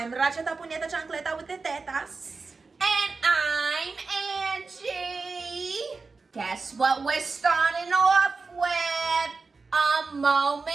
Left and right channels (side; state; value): left; quieter; 4.2 dB